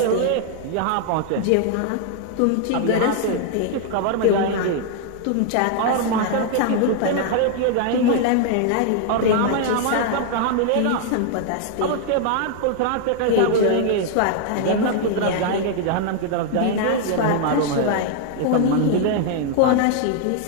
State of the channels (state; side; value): different; both; correlation 0.00